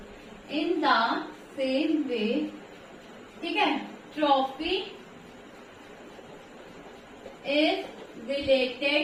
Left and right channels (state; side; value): identical; both; correlation 1.00